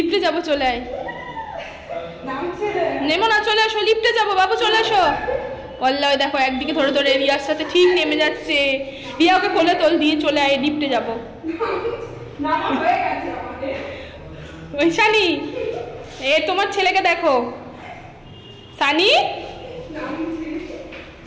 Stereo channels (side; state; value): both; identical; correlation 1.00